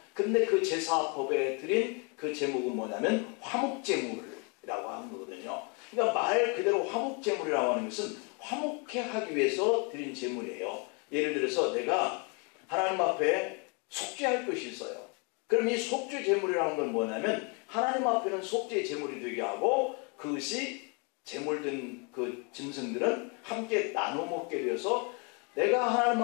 근데 그 제사법에 드린 그 제목은 뭐냐면 화목제물이라고 하는 거거든요. 그러니까 말 그대로 화목제물이라고 하는 것은 화목해 하기 위해서 드린 제물이에요. 예를 들어서 내가 하나님 앞에 속죄할 것이 있어요. 그럼 이 속죄 제물이라는 건 뭐냐면 하나님 앞에는 속죄 제물이 되게 하고 그것이 제물된 그 짐승들은 함께 나눠 먹게 되어서 내가 하나님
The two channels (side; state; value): right; quieter; 33.9 dB